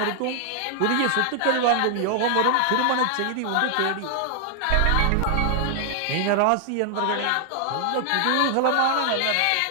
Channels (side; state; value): both; different; correlation 0.00